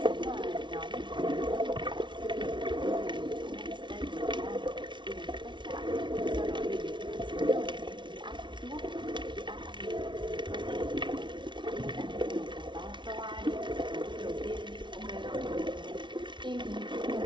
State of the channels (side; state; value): left; late; 0.23 ms